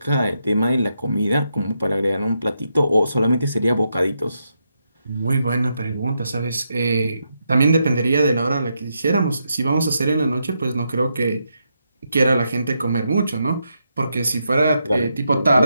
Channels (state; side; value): inverted; both; correlation -0.82